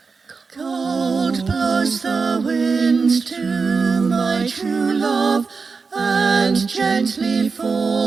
Cold blows the wind to my true love, and gently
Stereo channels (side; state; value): left; quieter; 4.8 dB